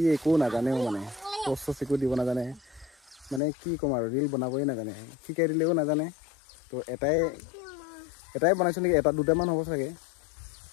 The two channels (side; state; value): right; drops out; at 3.4 s